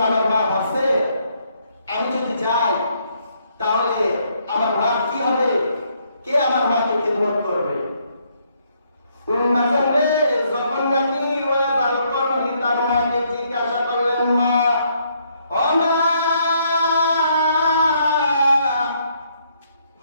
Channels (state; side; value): inverted; both; correlation -0.71